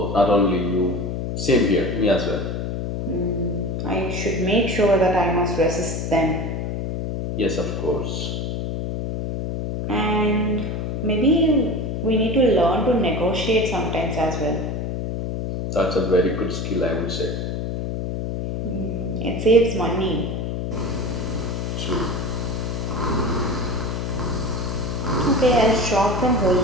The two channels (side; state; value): left; noise; hum, 3 dB below the sound